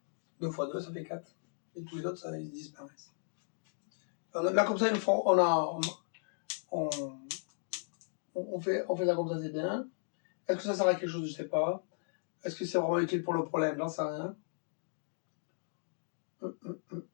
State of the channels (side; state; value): right; silent; digital silence